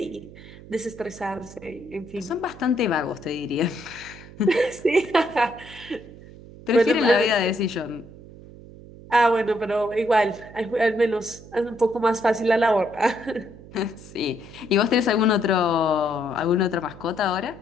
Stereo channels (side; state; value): right; noise; hum, 18 dB below the sound